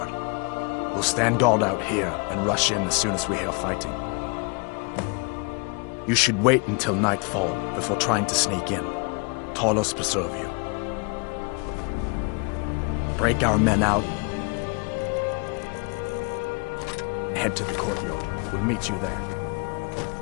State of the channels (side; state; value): right; quieter; 33.2 dB